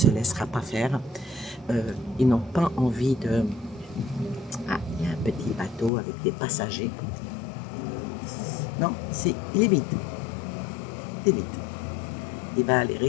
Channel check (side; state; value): right; drops out; at 5.9 s